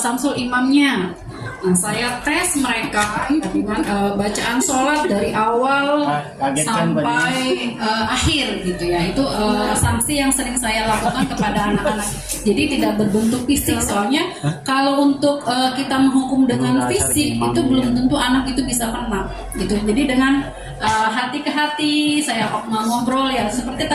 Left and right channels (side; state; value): both; identical; correlation 1.00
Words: imamnya. Nah, saya tes mereka dengan bacaan sholat dari awal sampai akhir gitu ya. Itu sanksi yang sering saya lakukan kepada anak-anak. Jadi tidak berbentuk fisik, soalnya kalau untuk kita menghukum dengan fisik itu belum tentu anak itu bisa kena gitu. Jadi dengan hati ke hati saya ngobrol ya, seperti